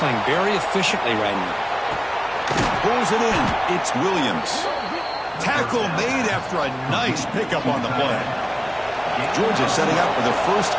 very efficiently right now. Pulls it in. It's Williams. Tackle made after a nice pickup on the play. Georgia setting up for the 1st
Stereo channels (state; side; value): identical; both; correlation 1.00